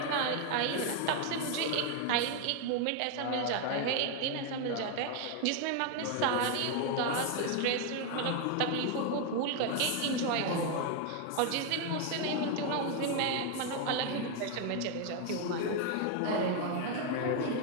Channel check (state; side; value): different; both; correlation 0.01